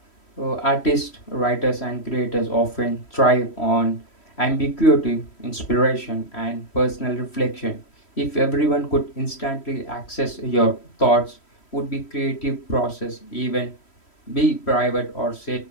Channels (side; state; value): right; late; 3.1 ms